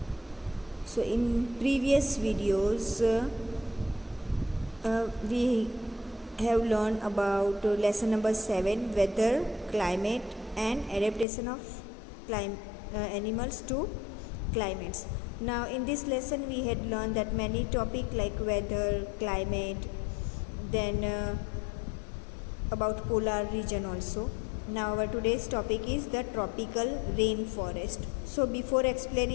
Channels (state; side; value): drops out; right; at 11.2 s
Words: So in previous videos we have learned about lesson number 7, weather, climate and adaptation of animals to climates. Now in this lesson we had learned that many topics like weather, climate, then about polar region also. Now our today's topic is the tropical rainforest. So before